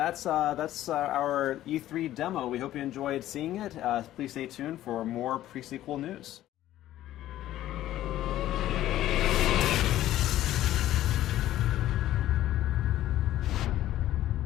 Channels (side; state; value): right; quieter; 13.7 dB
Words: our E3 demo. We hope you enjoyed seeing it. Please stay tuned for more pre-sequel news.